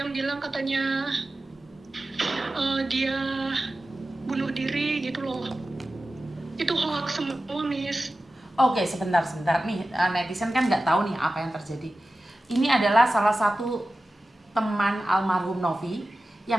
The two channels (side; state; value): both; normal; correlation 0.94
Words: bilang katanya dia bunuh diri gitu loh. Itu hoax semua Miss. Oke, sebentar. Nih, netizen kan nggak tahu nih apa yang terjadi. Ini adalah salah satu teman almarhum Novi